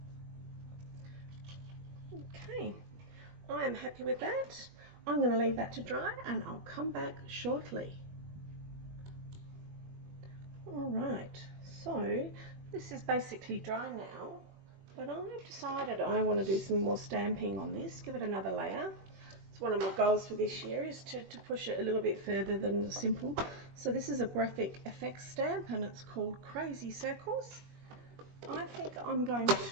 Okay, I am happy with that. I'm going to leave that to dry and I'll come back shortly. Alright, so this is basically dry now, but I've decided I want to do some more stamping on this, give it another layer. It's one of my goals for this year, is to push it a little bit further than the simple. So this is a graphic effects stamp and it's called Crazy Circles. I think I'm going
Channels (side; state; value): left; late; 21 ms